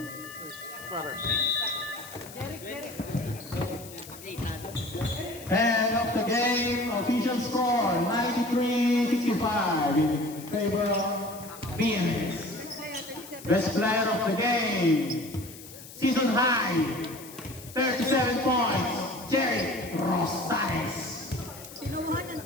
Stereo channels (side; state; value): left; noise; hiss, 16 dB below the sound